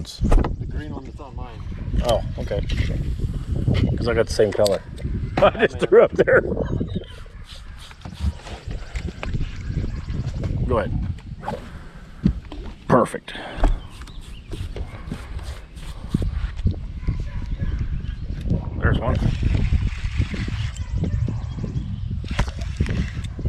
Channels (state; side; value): identical; both; correlation 1.00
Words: The green one that's on mine. Oh, okay. Because I got the same color. I just threw up there. Go ahead. Perfect. There's one.